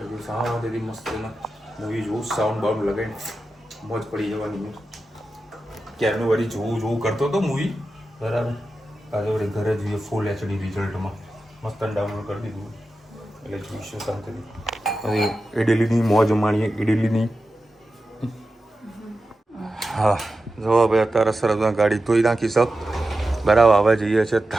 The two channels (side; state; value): both; normal; correlation 0.92